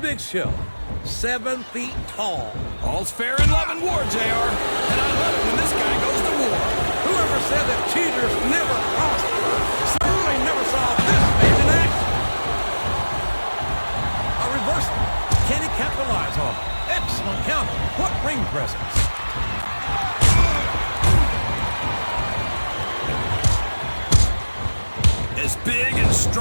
Show. 7 feet tall. All's fair in love and war, JR. And I love it when this guy goes to war. Whoever said that cheaters never prosper certainly never saw this man in action. A reversal. Can he capitalize on it? Excellent counter. What ring presence. As big and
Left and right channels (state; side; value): inverted; both; correlation -1.00